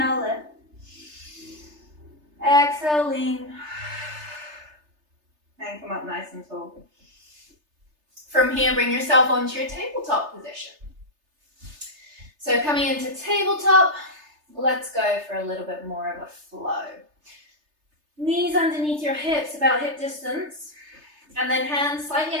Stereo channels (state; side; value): late; left; 3.3 ms